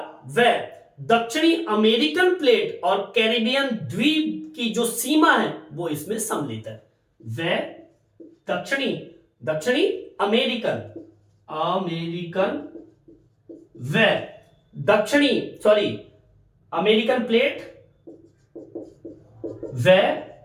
वह दक्षिणी अमेरिकन प्लेट और कैरिबियन द्वीप की जो सीमा है वो इसमें सम्मिलित है। वह दक्षिणी अमेरिकन अमेरिकन प्लेट व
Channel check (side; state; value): both; identical; correlation 1.00